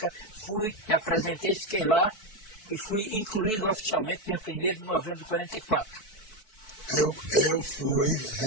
fui, me apresentei, fiquei lá e fui incluído oficialmente dia 1º de novembro de 44. Eu fui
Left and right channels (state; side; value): late; right; 4.6 ms